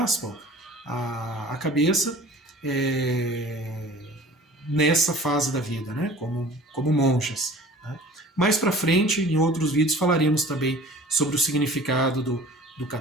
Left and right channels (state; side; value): normal; both; correlation 0.44